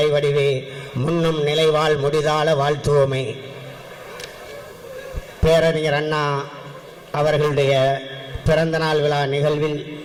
வடிவே, முன்னும் நிலைவாழ் முடிதாள வாழ்த்துவோமே. பேரறிஞர் அண்ணா அவர்களுடைய பிறந்தநாள் விழா நிகழ்வில்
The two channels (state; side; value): identical; both; correlation 1.00